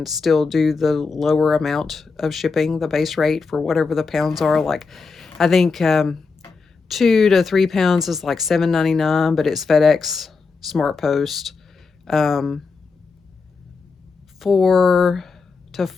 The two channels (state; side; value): quieter; right; 4.6 dB